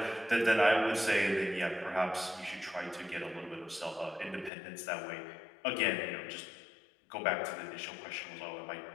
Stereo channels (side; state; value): right; drops out; at 4.5 s